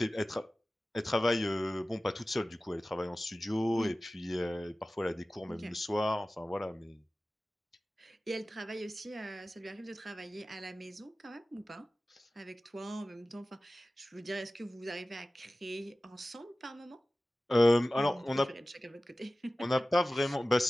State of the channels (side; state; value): both; normal; correlation 0.96